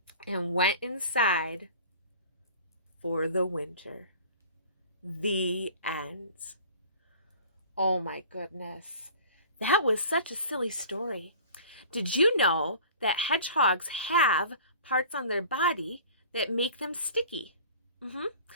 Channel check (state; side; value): inverted; both; correlation -0.43